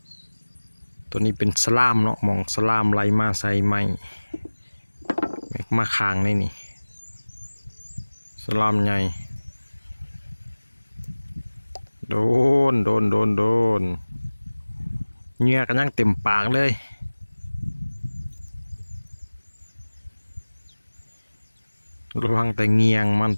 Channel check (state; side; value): inverted; both; correlation -1.00